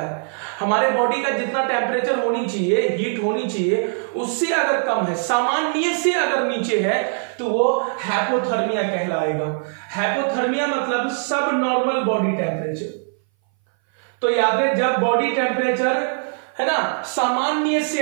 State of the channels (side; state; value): left; silent; 60 dB below the other